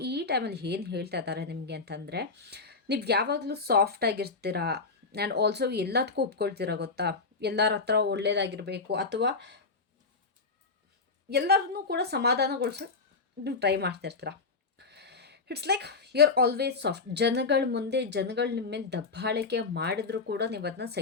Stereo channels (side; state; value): right; quieter; 4.2 dB